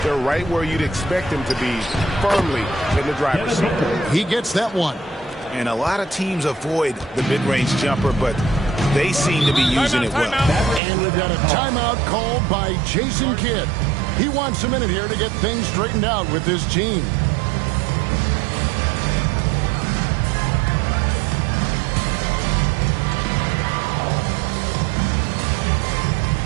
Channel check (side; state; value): left; drops out; at 10.8 s